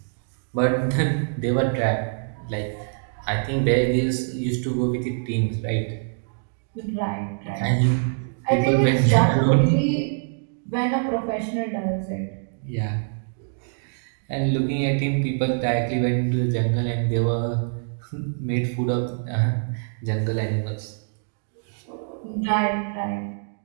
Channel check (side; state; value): left; silent; digital silence